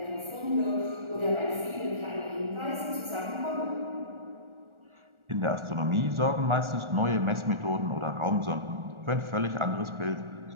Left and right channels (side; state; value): left; late; 1.4 ms